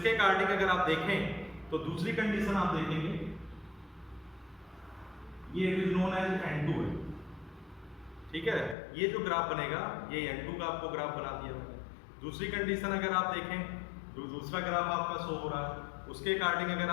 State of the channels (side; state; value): right; drops out; at 8.8 s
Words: अकॉर्डिंग अगर आप देखें तो दूसरी कंडीशन आप देखेंगे, ये it is known as N2 है, ठीक है। ये जो ग्राफ बनेगा ये N2 का आपको ग्राफ बना दिया मैंने। दूसरी कंडीशन अगर आप देखें, जो दूसरा ग्राफ आपका शो हो रहा है, उसके अकॉर्डिंग अगर